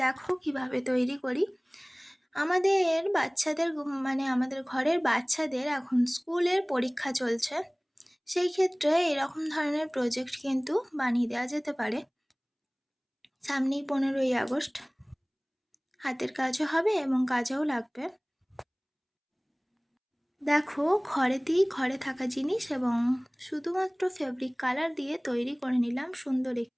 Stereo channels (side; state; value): both; identical; correlation 1.00